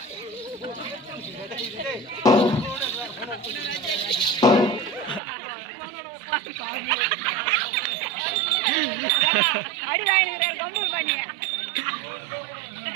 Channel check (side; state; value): left; drops out; at 5.2 s